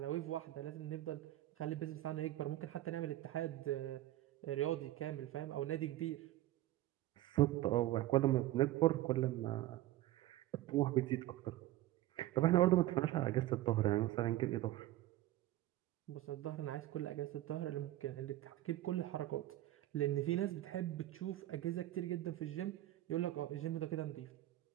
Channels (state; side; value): quieter; left; 15.2 dB